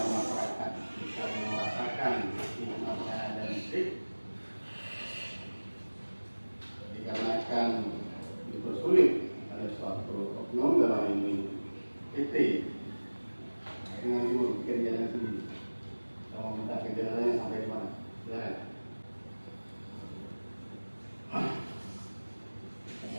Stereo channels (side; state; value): both; inverted; correlation -1.00